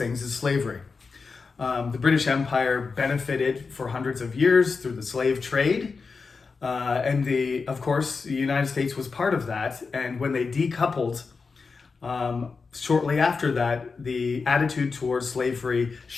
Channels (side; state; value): right; quieter; 4.7 dB